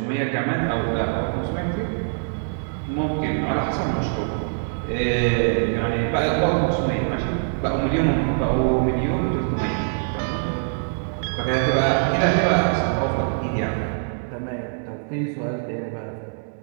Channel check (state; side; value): silent; left; 63 dB below the other